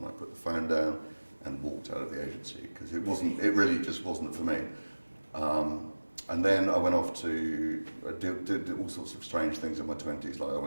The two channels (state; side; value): inverted; both; correlation -1.00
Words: I put the phone down and walked out of the agency because it really just wasn't for me. And then I went off to did all sorts of strange things in my 20s, like I